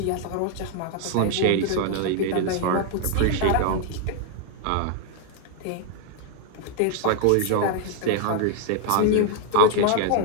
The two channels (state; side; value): different; both; correlation 0.00